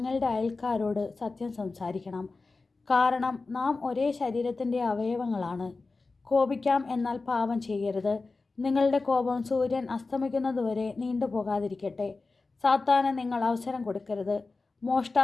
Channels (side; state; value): right; quieter; 3.8 dB